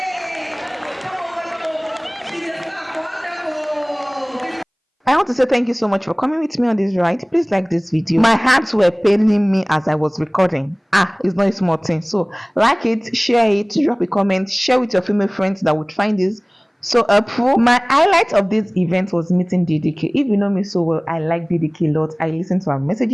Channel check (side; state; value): both; identical; correlation 1.00